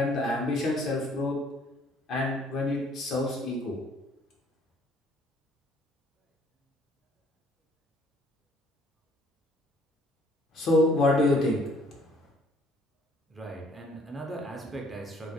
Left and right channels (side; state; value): both; normal; correlation 0.60